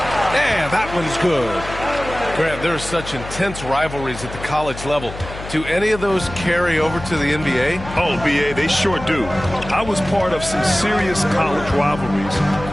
And that one's good. Grant, there are such intense rivalries at the college level. Do any of those carry over to the NBA? Oh, B.A., they sure do. I was part of some serious college rivalries.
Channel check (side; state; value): left; noise; hum, 11 dB below the sound